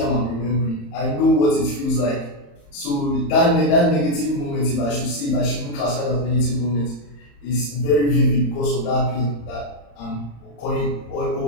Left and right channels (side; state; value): right; late; 35 ms